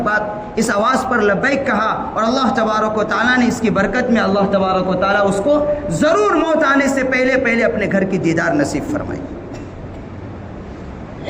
بات اس آواز پر لبیک کہا، اور اللہ تبارک و تعالیٰ نے اس کی برکت میں اللہ تبارک و تعالیٰ اس کو ضرور موت آنے سے پہلے اپنے گھر کی دیدار نصیب فرمائی۔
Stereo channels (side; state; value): both; identical; correlation 1.00